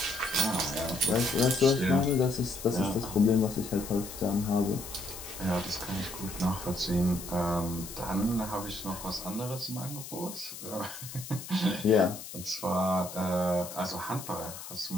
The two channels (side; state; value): left; noise; hiss, 11 dB below the sound